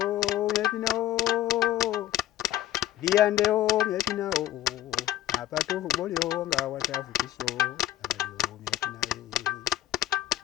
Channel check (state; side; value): quieter; right; 13.2 dB